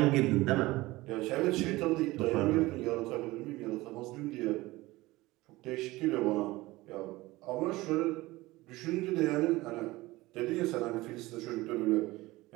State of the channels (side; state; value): left; quieter; 19.6 dB